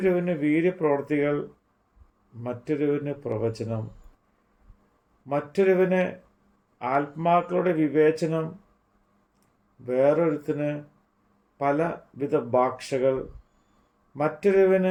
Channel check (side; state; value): both; identical; correlation 1.00